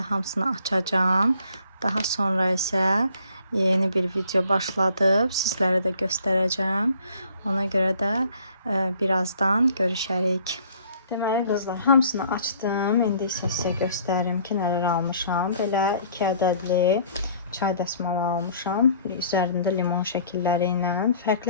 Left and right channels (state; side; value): inverted; both; correlation -0.57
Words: hamısını açacağım. Daha sonra isə yeni bir video başladıb. Sizlərə də göstərəcəm. Ona görə də birazdan görüşərik. Deməli qızlar, hamısını açdım. İndi isə sizə göstərim ki, nələr almışam. Belə 2 ədədli çay dəsmalı almışam. Üzərində limon şəkilləri ilə.